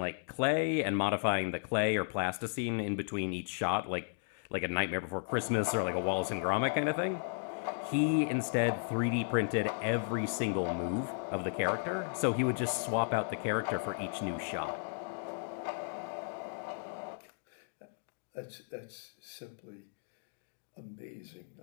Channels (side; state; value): right; silent; digital silence